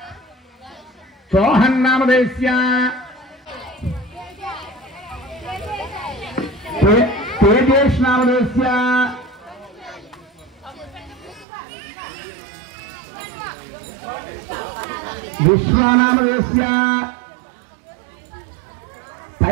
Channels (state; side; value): drops out; left; at 11.5 s